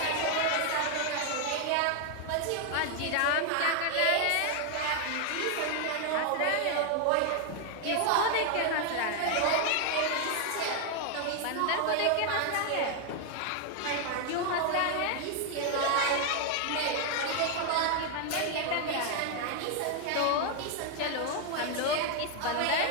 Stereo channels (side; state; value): both; different; correlation 0.00